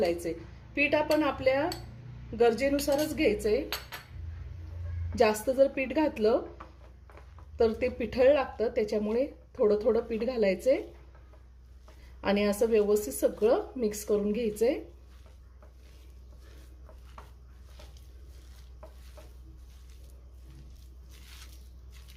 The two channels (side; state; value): both; identical; correlation 1.00